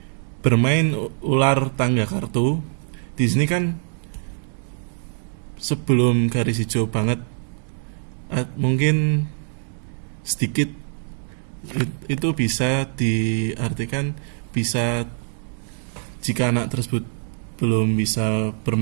bermain ular tangga kartu, di sini kan sebelum garis hijau banget, mungkin sedikit, itu bisa diartikan bisa jika anak tersebut belum bisa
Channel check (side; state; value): left; silent; digital silence